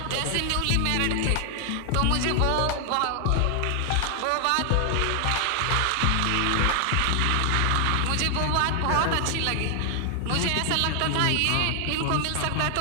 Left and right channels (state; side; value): different; both; correlation 0.00